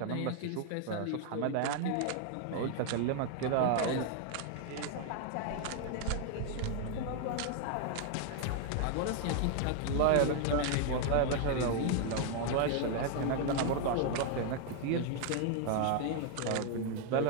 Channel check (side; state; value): both; different; correlation 0.00